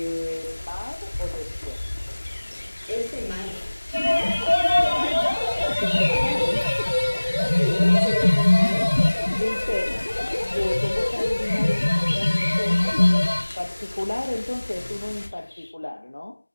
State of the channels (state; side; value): inverted; both; correlation -1.00